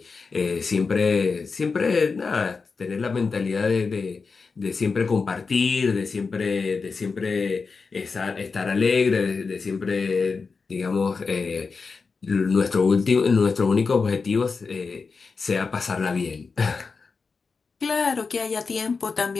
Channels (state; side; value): quieter; right; 4.7 dB